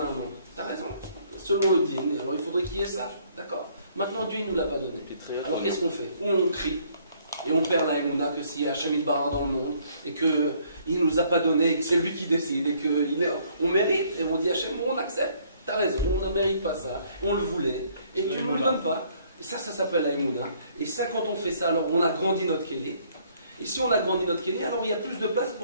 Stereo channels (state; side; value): inverted; both; correlation -0.63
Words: un manque. T'as raison. Selon le dîner, alors il faudrait qu'il y ait ça. D'accord. Maintenant Dieu il nous l'a pas donné. Alors qu'est-ce qu'on fait? Ou on crie. Et on perd la Emouna que s'il y a Hachem Barra dans le monde et qu'il ne nous a pas donné et que c'est lui qui décide et qu'on mérite et on dit Hachem, on accepte, t'as raison, on ne mérite pas ça, on le voulait et tu ne nous le donnes pas. Et ça s'appelle la Emouna. Et ça, quand on fait ça, alors on a grandi notre Kéli. Et si on a grandi notre Kéli, alors il y a plus de place